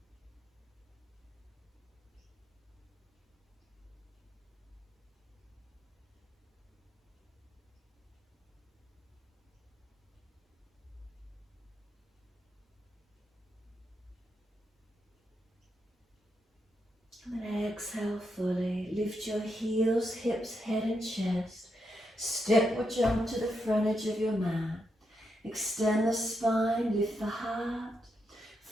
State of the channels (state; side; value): normal; both; correlation 0.83